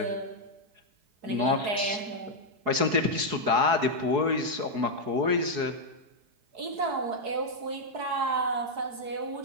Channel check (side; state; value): left; late; 4.7 ms